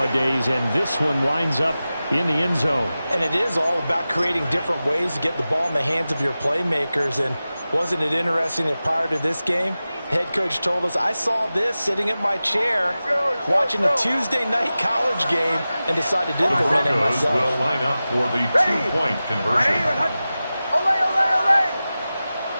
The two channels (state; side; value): inverted; both; correlation -0.95